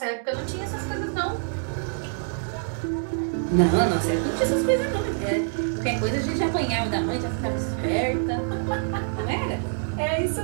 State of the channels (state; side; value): silent; left; 61 dB below the other